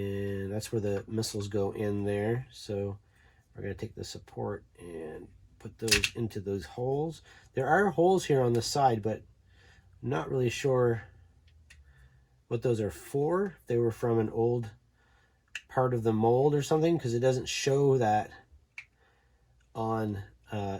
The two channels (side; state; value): both; identical; correlation 1.00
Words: that's where the missiles go in there. So we're going to take the support and put those into those holes. There are holes here on the side, but I'm not really sure what those are for. If they were from an old part of the mold or something, because it doesn't show that on